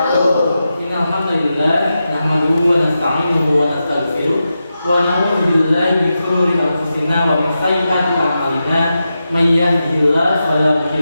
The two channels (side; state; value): both; inverted; correlation -0.90